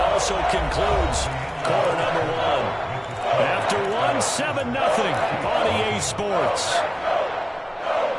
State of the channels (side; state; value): both; identical; correlation 1.00